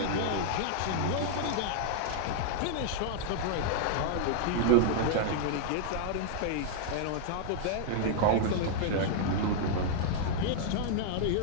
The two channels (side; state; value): both; different; correlation -0.01